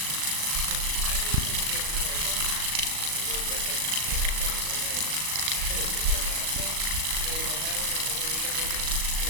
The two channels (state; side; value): late; left; 38 ms